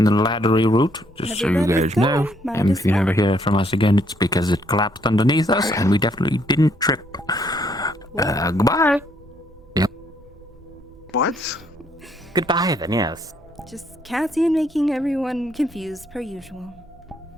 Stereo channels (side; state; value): both; normal; correlation 0.70